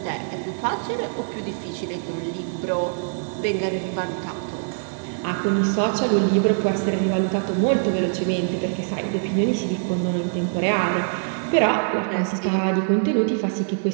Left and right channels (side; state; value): left; silent; digital silence